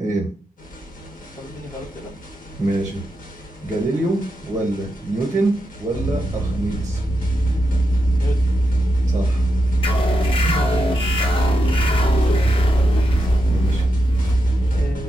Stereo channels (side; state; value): both; normal; correlation 0.86